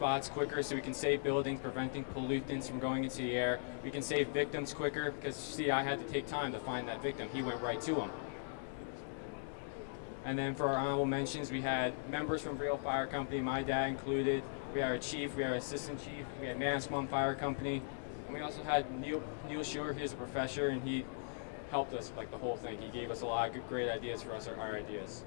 quicker so we can save buildings, preventing pollutants from going into the air. We can save victims quicker because, see, I had to take time to find that victim. He went right to him. And then for our honorable mentions, we had members from Real Fire Company, my dad included. We had our chief, we had our assistant chief, we had Manasquan Fire Company. And we also had Neil Schuer, he was a professor, and he helped us like the whole thing. He gave us a lot of good, great ideas for us, our ideas.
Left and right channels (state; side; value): silent; right; digital silence